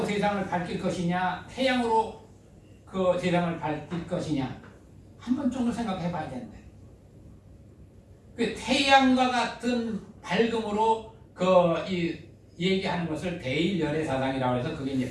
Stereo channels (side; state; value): both; identical; correlation 1.00